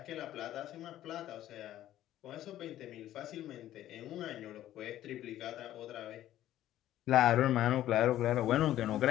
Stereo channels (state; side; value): quieter; right; 13.1 dB